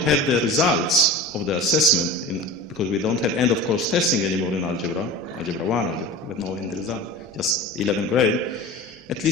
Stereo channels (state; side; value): normal; both; correlation 0.34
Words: the results of the assessment, because we don't have end-of-course testing anymore in Algebra 1, we have no end result, just 11th grade, at